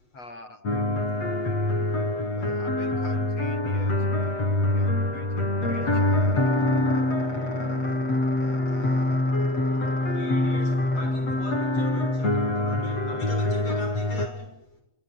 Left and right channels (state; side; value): late; right; 8.1 ms